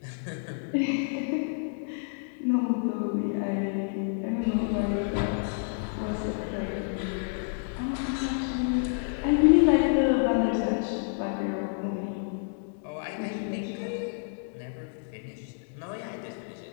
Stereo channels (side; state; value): right; silent; digital silence